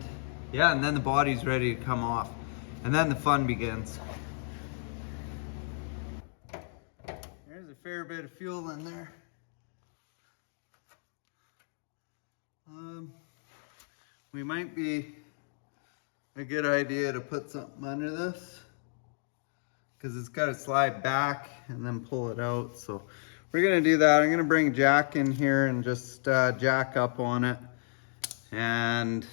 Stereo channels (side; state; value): right; silent; digital silence